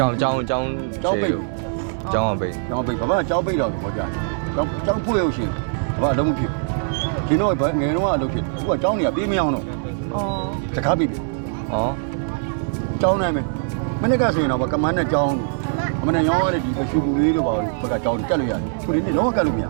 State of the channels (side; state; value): left; silent; digital silence